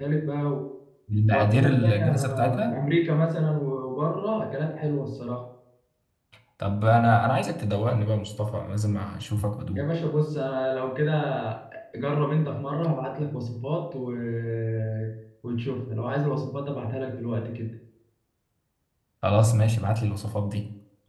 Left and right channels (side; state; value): both; identical; correlation 1.00